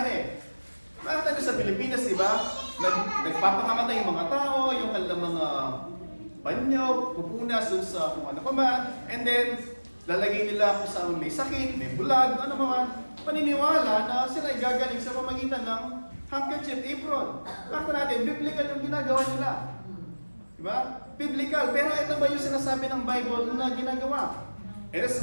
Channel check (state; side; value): inverted; both; correlation -1.00